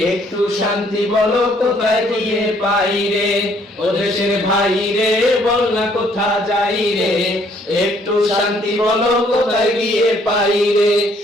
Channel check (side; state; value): both; normal; correlation 0.64